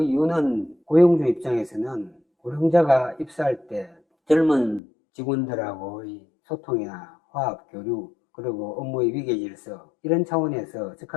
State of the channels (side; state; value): right; drops out; at 4.8 s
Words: 이유는 고용주 입장에서는 고령자가 입사할 때 젊은 직원들하고의 소통이나 화합, 교류, 그리고 업무의 위계 질서 이런 차원에서